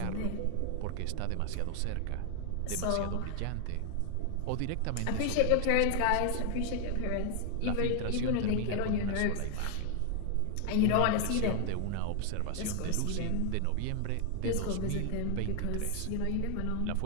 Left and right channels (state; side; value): different; both; correlation 0.00